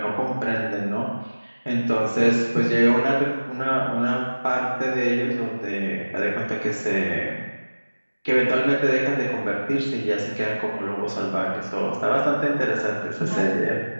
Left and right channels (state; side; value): inverted; both; correlation -1.00